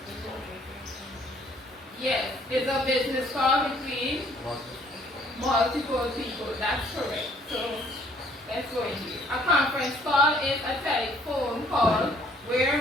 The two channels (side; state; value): both; normal; correlation 0.61